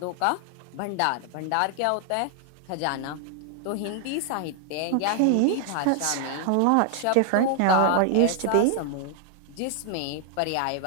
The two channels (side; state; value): both; different; correlation 0.00